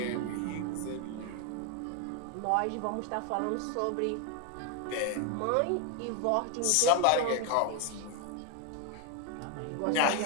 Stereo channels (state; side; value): different; both; correlation 0.01